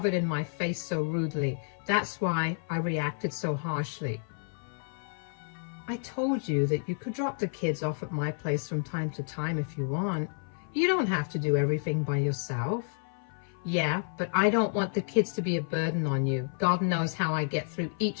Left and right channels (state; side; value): silent; right; 55 dB below the other